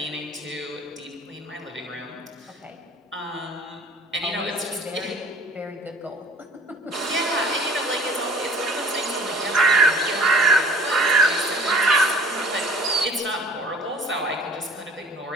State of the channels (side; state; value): both; normal; correlation 0.50